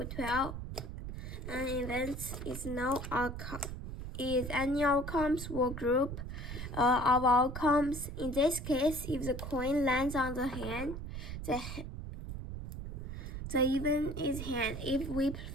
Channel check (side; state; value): right; noise; rumble, 7 dB below the sound